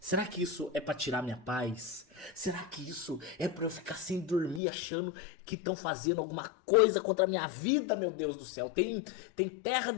Será que isso é pra tirar minha paz? Será que isso é pra eu ficar sem dormir achando que estão fazendo alguma coisa contra a minha vida, meu Deus do céu? Tem terra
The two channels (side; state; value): right; drops out; at 4.6 s